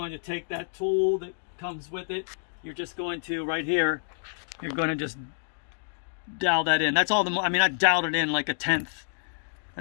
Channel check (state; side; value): silent; right; digital silence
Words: to take that tool that comes with it. You're just going to, right here, you're going to just dowel that in. That's all I mean, I doweled it in like a 1/10.